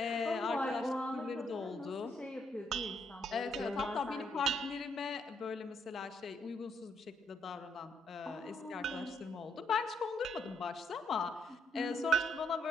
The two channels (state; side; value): normal; both; correlation 0.72